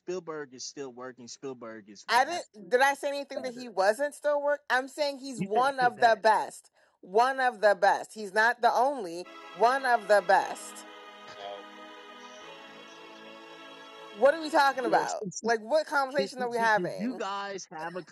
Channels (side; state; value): both; identical; correlation 1.00